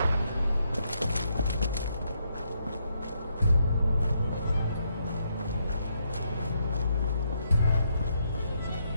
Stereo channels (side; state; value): both; inverted; correlation -0.76